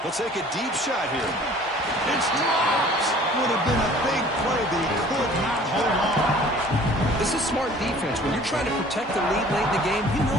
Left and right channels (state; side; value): normal; both; correlation 0.50